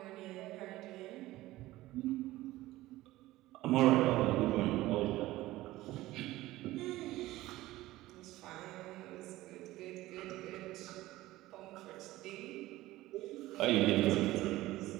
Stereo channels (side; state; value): left; quieter; 17.1 dB